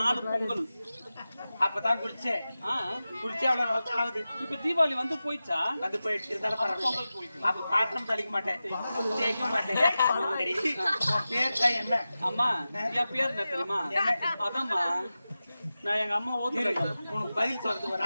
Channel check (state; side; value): inverted; both; correlation -0.94